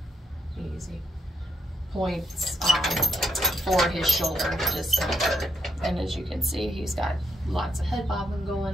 points for his shoulder discomfort. And as you can see, he's got lots of head bobbing going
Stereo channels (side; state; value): both; normal; correlation 0.78